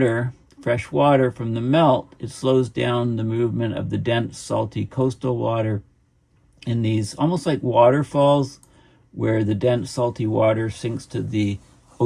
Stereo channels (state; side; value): identical; both; correlation 1.00